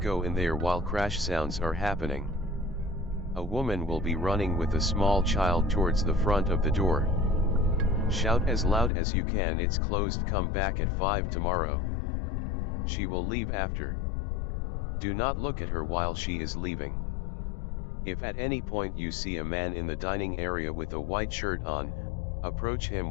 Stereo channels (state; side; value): drops out; right; at 8.9 s